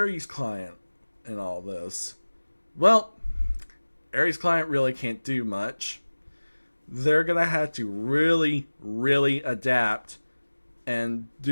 Client and all this? Well, Ares Client really can't do much. They're going to have to really, really adapt and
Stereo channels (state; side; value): inverted; both; correlation -1.00